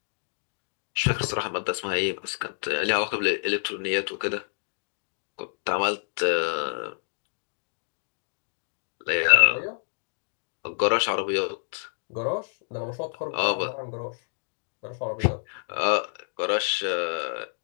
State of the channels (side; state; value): right; silent; digital silence